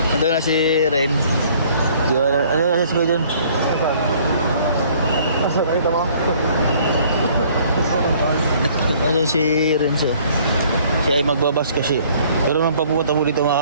Ando na si Ren. Ano na si Kuya John? Asa nakita mo? Ano si Ren siya? Siya ay magbabas kasi. Pero nung papunta mo dito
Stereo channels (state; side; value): inverted; both; correlation -0.58